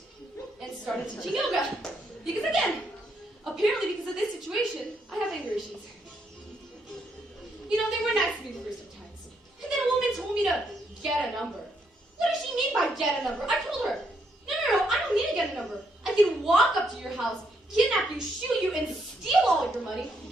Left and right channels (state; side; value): normal; both; correlation 0.76